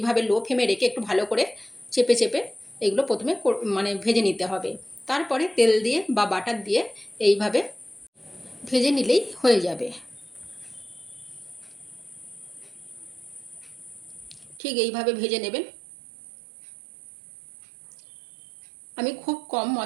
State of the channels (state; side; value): drops out; left; at 14.6 s